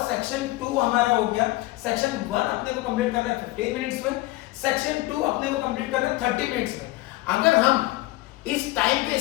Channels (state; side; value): quieter; right; 19.1 dB